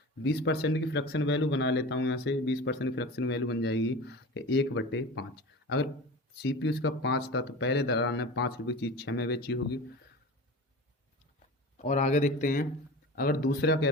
20% की फ्रैक्शन वैल्यू बना लेता हूँ यहाँ से। 20% की फ्रैक्शन वैल्यू बन जाएगी कि 1/5। अगर सीपी उसका 5 था, तो पहले दलाल ने 5 रुपये की चीज़ 6 में बेची होगी। और आगे देखते हैं, अगर दूसरा कह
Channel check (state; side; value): normal; both; correlation 0.33